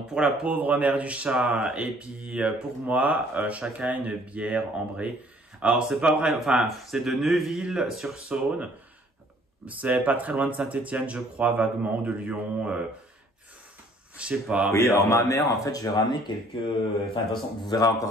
pour la pauvre mère du chat, et puis pour moi, chacun une bière ambrée. Alors, c'est pas vrai, enfin, c'est de Neuville-sur-Saône. C'est pas très loin de Saint-Étienne, je crois, vaguement, ou de Lyon. Je sais pas. Oui, alors ma mère, en fait, je vais ramener quelques... Enfin, de toute façon, vous verrez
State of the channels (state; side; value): normal; both; correlation 0.58